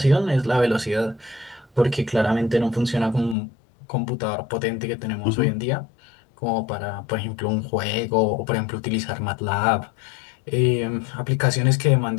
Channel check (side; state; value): right; drops out; at 3.4 s